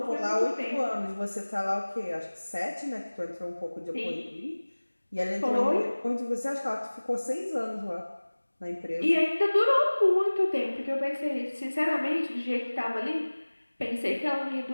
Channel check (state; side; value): inverted; both; correlation -1.00